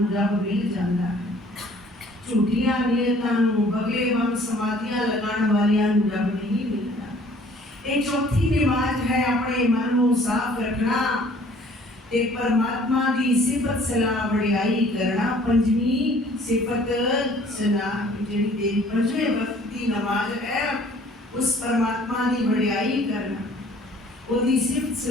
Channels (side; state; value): both; normal; correlation 0.55